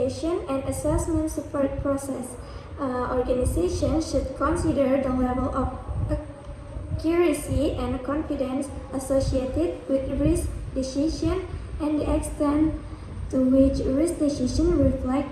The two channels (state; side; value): identical; both; correlation 1.00